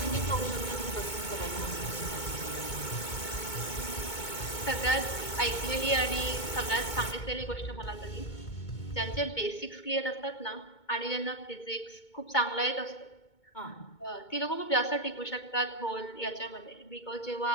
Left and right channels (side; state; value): right; late; 2.2 ms